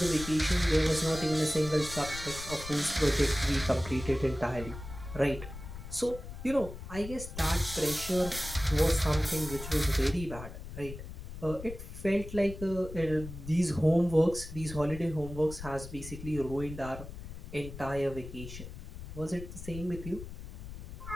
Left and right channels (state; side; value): noise; left; rumble, 11 dB below the sound